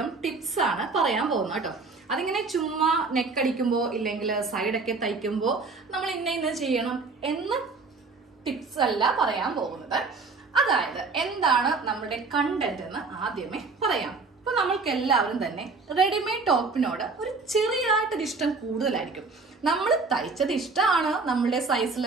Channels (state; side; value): quieter; left; 4.1 dB